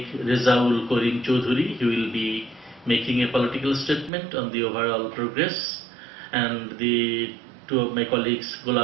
Rezaul Karim Choudhury, he will be making a political statement on the overall progress, and the two of my colleagues,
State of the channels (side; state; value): left; drops out; at 4.1 s